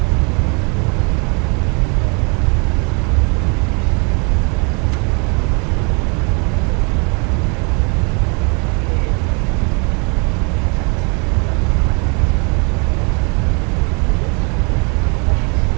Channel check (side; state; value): left; quieter; 34.3 dB